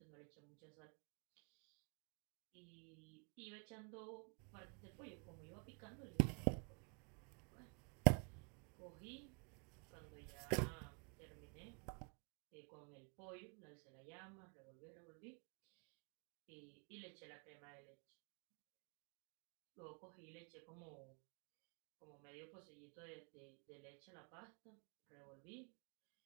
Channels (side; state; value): left; quieter; 33.8 dB